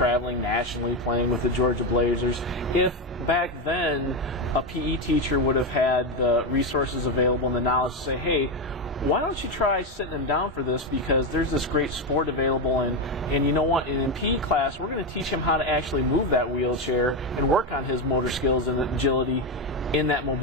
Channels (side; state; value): both; normal; correlation 0.10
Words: nationally, playing with the Georgia Blazers, if back then a PE teacher would have had the resources available and the knowledge to say, hey, why don't you try sitting him down for this, because there's this great sport available, and you know what, in PE class we're going to teach him how to actually move that wheelchair and work on his motor skills and agility in that